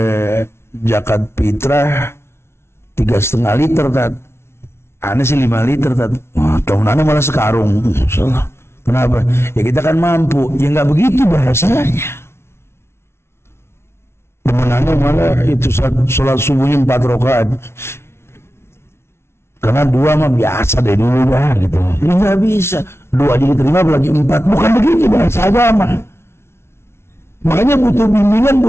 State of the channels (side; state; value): right; late; 0.12 ms